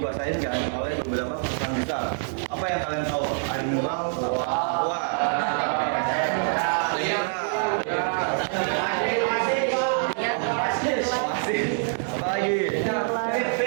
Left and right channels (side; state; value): left; silent; 60 dB below the other